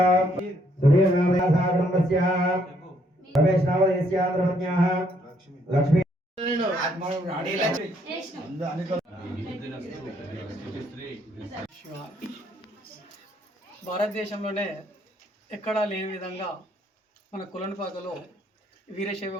సురేణామయాసా కుటుంబస్య రమేష్నామదేస్య ధర్మజ్ఞాః లక్ష్మీ భారతదేశంలోనే ఎక్కడా లేని విధంగా మన కులనపాకలో వీరశైవ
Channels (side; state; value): both; normal; correlation 0.70